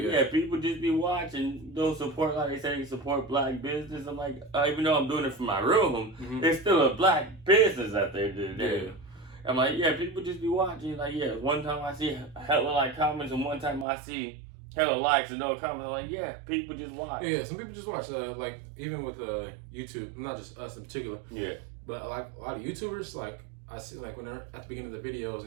yeah, people just be watching. Don't support, like they say, support black business. I'm like, even though I'm doing it from my room, there's still a black business out there. Yeah. I'm like, yeah, people just be watching. Like, yeah, one time I see hella like comments, and one time I see hella likes and no comments. I'm like, yeah, people just watch. Yeah, some people just watch. Like even with YouTube, not just us in particular. Yeah. But like a lot of YouTubers, like I see, like when they're at the beginning of the videos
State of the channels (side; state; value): left; drops out; at 13.9 s